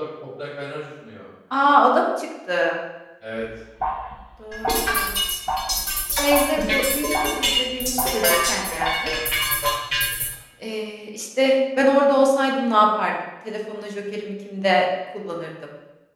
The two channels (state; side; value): identical; both; correlation 1.00